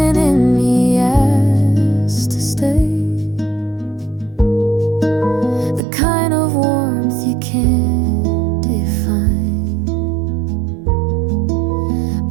in me asked to stay. The kind of warmth you can't define,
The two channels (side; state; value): left; drops out; at 5.8 s